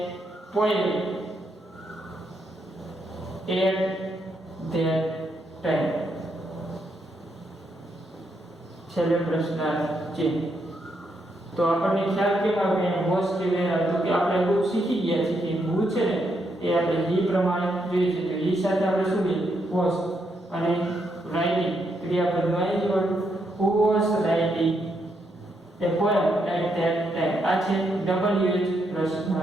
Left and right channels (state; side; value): normal; both; correlation 0.79